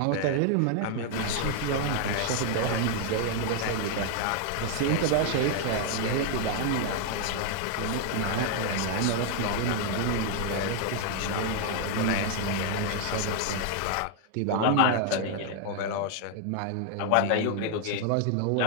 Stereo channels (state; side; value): different; both; correlation 0.00